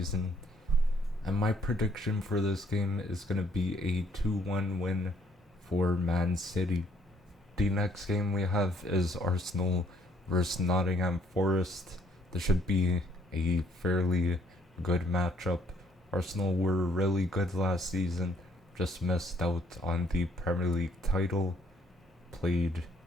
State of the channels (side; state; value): both; normal; correlation 0.67